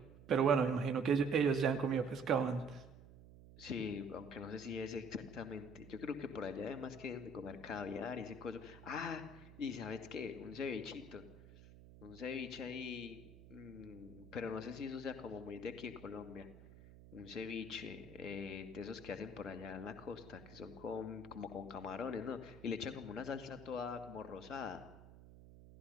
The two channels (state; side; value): noise; right; hum, 18 dB below the sound